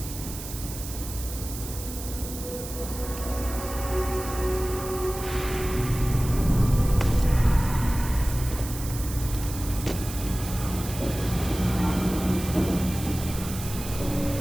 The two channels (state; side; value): noise; right; hiss, 10 dB below the sound